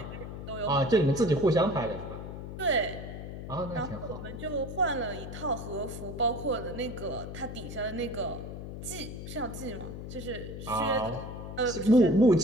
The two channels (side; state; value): left; noise; hum, 9 dB below the sound